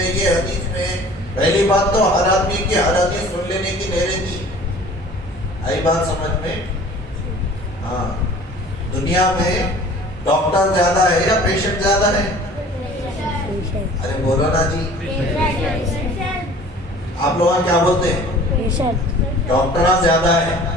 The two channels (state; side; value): normal; both; correlation 0.47